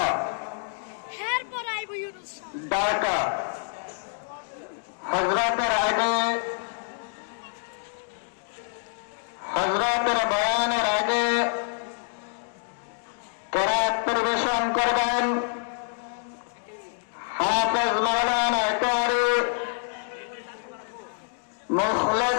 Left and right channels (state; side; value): silent; right; digital silence